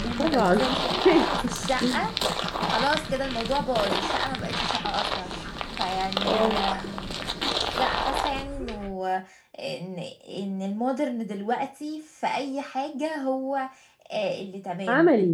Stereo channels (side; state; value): both; identical; correlation 1.00